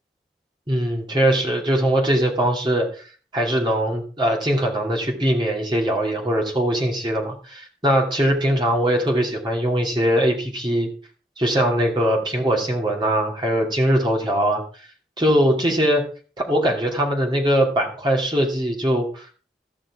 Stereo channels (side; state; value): both; normal; correlation 0.68